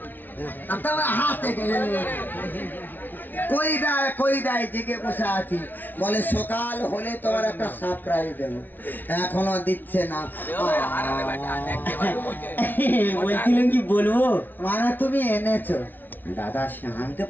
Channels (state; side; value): late; right; 0.087 ms